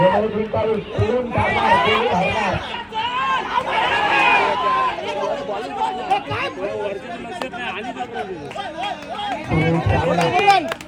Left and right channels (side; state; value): both; identical; correlation 1.00